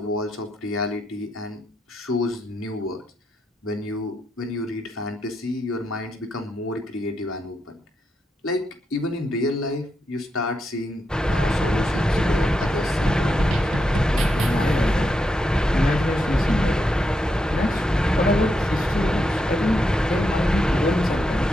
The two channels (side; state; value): both; normal; correlation 0.83